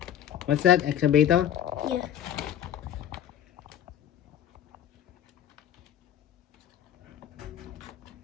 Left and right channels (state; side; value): quieter; right; 10.5 dB